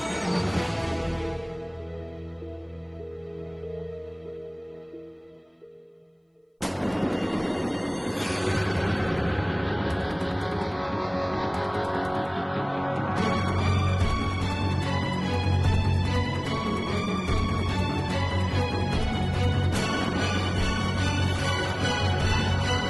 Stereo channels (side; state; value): both; identical; correlation 1.00